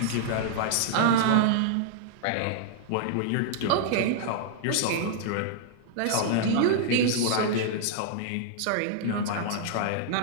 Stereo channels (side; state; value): both; different; correlation -0.01